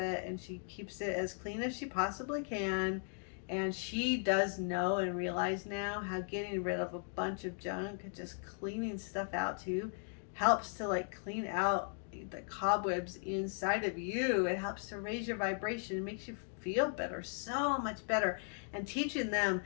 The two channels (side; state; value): right; silent; 53 dB below the other